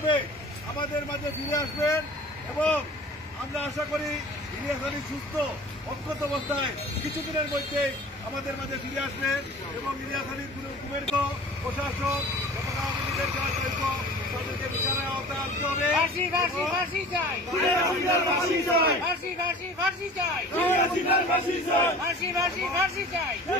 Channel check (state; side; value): normal; both; correlation 0.42